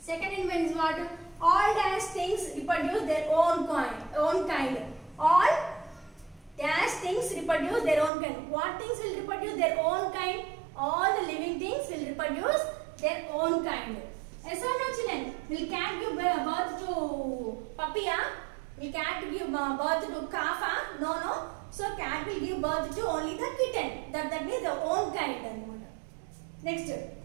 Second in means what? All dash things reproduce their own kind. All dash things reproduce their own kind. What things will reproduce their own kind? All the living things will reproduce their own kind. Yes or no, children? Will cat give birth to puppy? Will cat give birth to calf? No. So cat will give birth to only the kitten. That means the own kind. Next,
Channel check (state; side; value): drops out; left; at 8.1 s